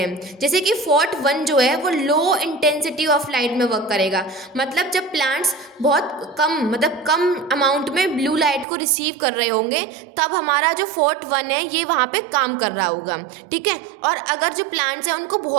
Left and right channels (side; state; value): left; drops out; at 8.7 s